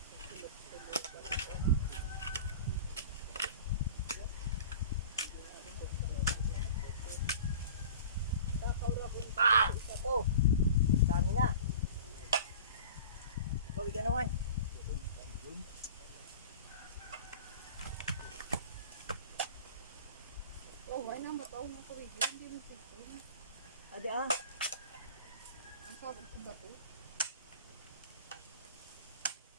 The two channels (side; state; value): both; inverted; correlation -0.39